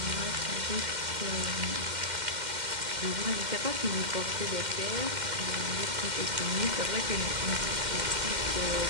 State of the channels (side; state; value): left; late; 2.1 ms